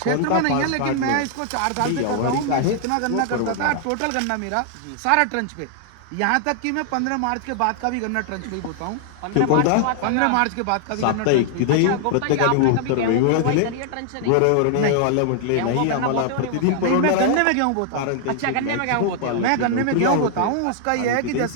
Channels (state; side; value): different; both; correlation -0.01